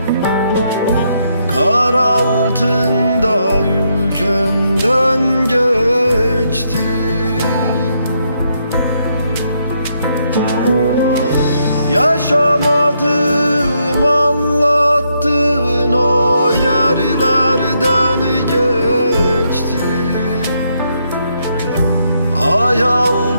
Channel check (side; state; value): both; inverted; correlation -0.77